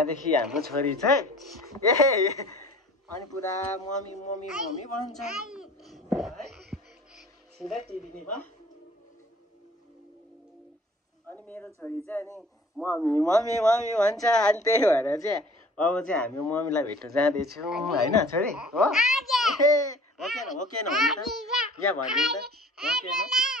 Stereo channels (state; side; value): normal; both; correlation 0.49